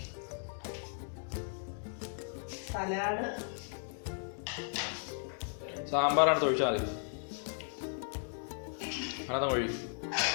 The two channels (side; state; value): right; silent; 54 dB below the other